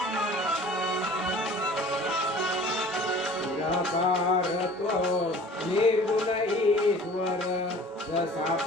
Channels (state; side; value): normal; both; correlation 0.47